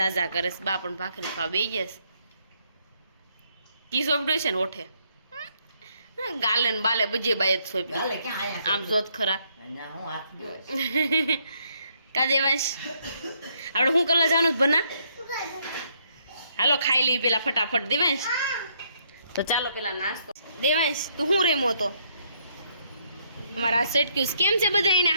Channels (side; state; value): both; inverted; correlation -0.72